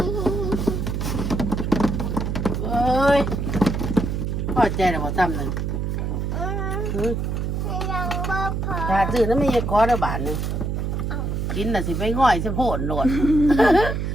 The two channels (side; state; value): right; noise; hum, 1 dB below the sound